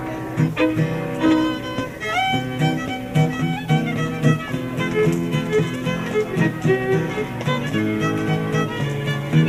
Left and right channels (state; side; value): identical; both; correlation 1.00